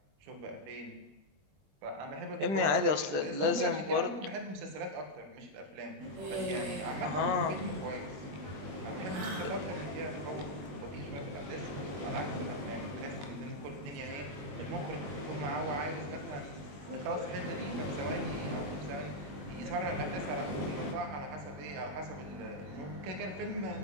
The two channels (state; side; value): late; left; 20 ms